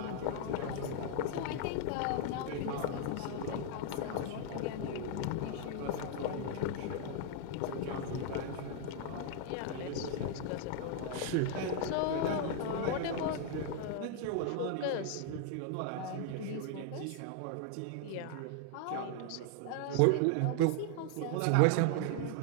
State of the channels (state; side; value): different; both; correlation 0.00